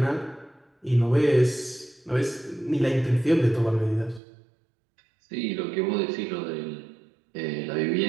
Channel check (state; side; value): drops out; left; at 4.2 s